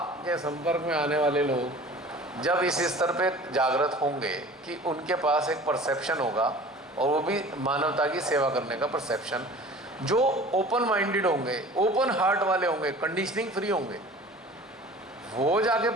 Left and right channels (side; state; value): both; normal; correlation 0.43